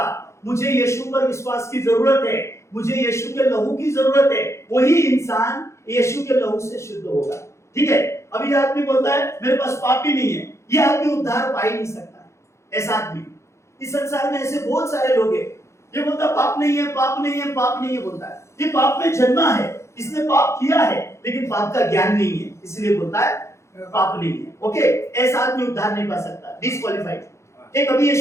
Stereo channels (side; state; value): right; late; 0.14 ms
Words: मुझे यीशु पर विश्वास की जरूरत है, मुझे यीशु के लहू की जरूरत है, वही इंसान यीशु के लहू से शुद्ध होगा। ठीक है। अभी आदमी बोलता है मेरे पास पाप ही नहीं है, ये आदमी उद्धार पा ही नहीं सकता। ऐसा आदमी इस संसार में ऐसे बहुत सारे लोग हैं। ये बोलता पाप नहीं है, पाप नहीं है, पाप नहीं है बोलता है। ये पाप में जन्मा है, इसने पाप किया है, लेकिन पाप का ज्ञान नहीं है, इसलिए बोलता है पाप नहीं है। ओके, ऐसा आदमी उद्धार नहीं पा सकता, डिस्क्वालिफाइड। एक अभी